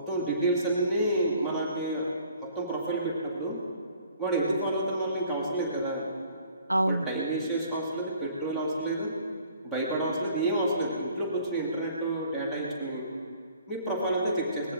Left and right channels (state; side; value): inverted; both; correlation -0.55